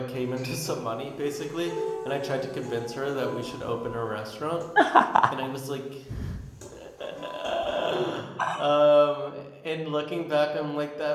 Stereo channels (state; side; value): identical; both; correlation 1.00